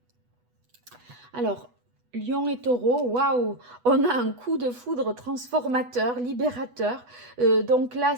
Alors, Lion et Taureau, waouh, on a un coup de foudre transformateur, libérateur. Donc là,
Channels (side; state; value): left; late; 8.1 ms